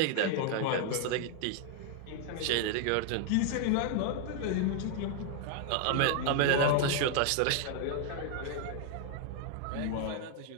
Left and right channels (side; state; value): both; different; correlation 0.00